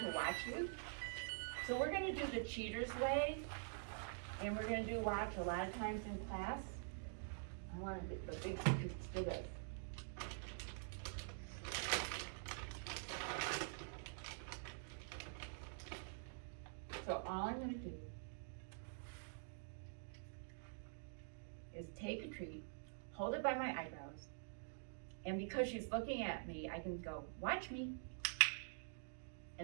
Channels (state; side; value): silent; left; digital silence